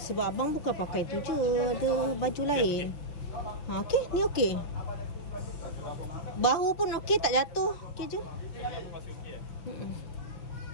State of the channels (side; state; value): right; late; 6.4 ms